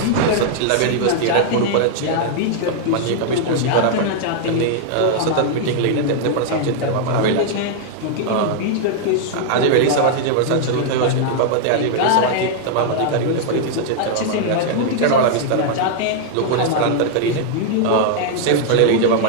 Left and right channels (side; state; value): both; different; correlation -0.01